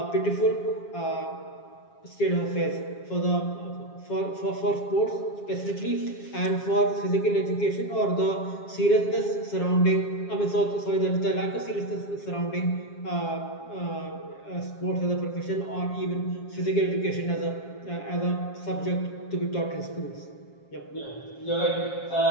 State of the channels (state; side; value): late; right; 7.3 ms